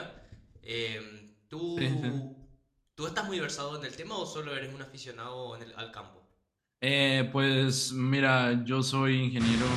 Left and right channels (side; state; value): both; identical; correlation 1.00